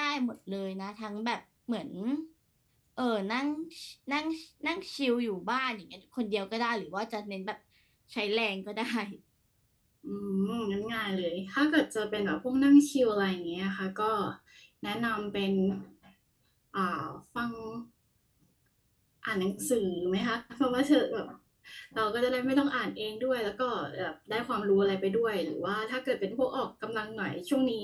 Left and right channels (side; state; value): both; identical; correlation 1.00